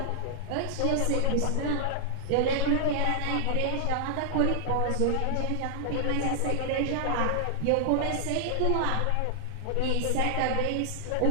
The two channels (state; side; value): different; both; correlation -0.01